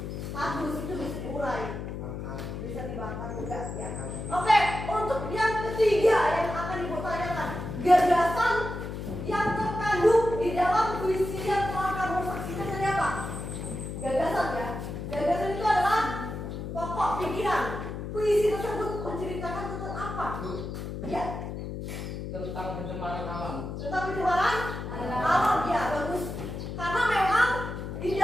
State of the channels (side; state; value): left; noise; hum, 6 dB below the sound